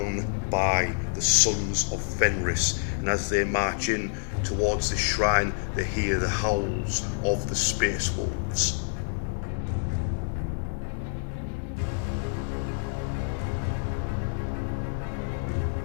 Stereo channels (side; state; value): right; silent; digital silence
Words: by the Sons of Fenris, and as they march in towards the shrine, they hear the howls of the Space Wolves.